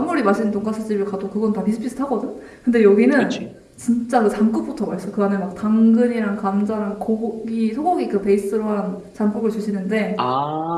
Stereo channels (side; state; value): both; identical; correlation 1.00